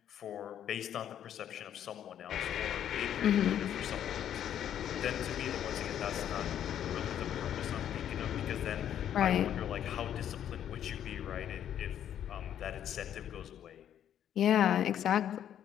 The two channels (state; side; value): quieter; right; 10.1 dB